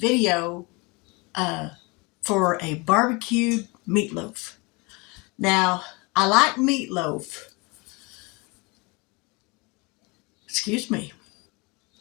for a barbecued meatloaf. Now, I like meatloaf. Excuse me.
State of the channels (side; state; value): right; quieter; 27.1 dB